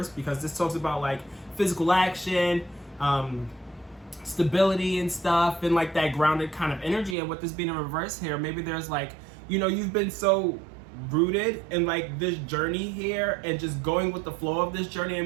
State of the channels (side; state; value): left; drops out; at 7.2 s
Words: because this talks about like physical action, stability and stuff, and like that grounded kind of energy. And with this being in reverse here, maybe there's like, you know, you've been so rooted in like this journey here and just going with the flow of this journey